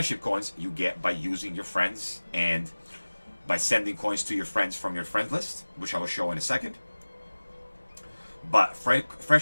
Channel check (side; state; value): both; inverted; correlation -1.00